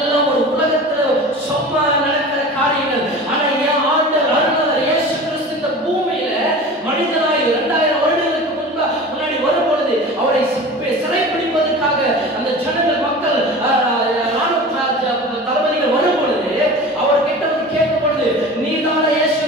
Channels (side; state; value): both; normal; correlation 0.36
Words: ஒரு உலகத்துல சும்மா நடக்கிற காரியங்கள். ஆனா என் ஆண்டவர் அருளாளர் இயேசு கிறிஸ்து இந்த பூமியில மனிதனாய் 2000 வருடங்களுக்கு முன்னாடி வரும் பொழுது அவரை சிறைப்பிடிப்பதற்காக அந்த ஜனங்கள் மக்கள் தளபதிகள் வரும் பொழுது அவர் கிட்ட வந்து கேட்கும் பொழுது நீதான